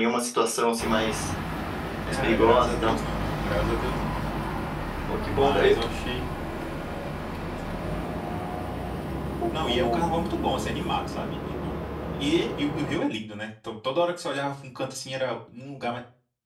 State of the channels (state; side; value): identical; both; correlation 1.00